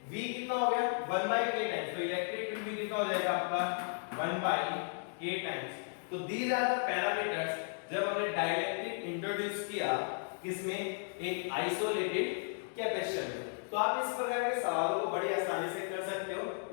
V कितना हो गया 1/K टाइम्स, तो इलेक्ट्रिक फील्ड भी कितना हो जाएगा आपका 1/K टाइम्स। तो दीज आर द पैरामीटर्स जब हमने डाइलेक्ट्रिक इंट्रोड्यूस किया किसमें, एक आइसोलेटेड कैपेसिटर में। तो आप इस प्रकार के सवालों को बड़ी आसानी से कर सकते हो,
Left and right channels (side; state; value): right; silent; 55 dB below the other